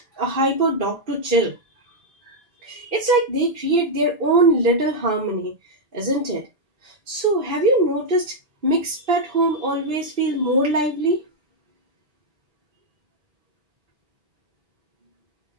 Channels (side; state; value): left; late; 1.8 ms